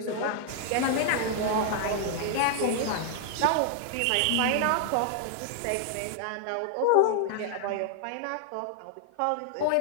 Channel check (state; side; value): different; both; correlation 0.00